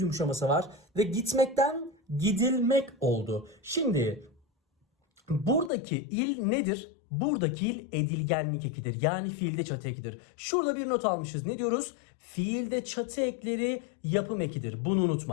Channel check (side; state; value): right; drops out; at 5.7 s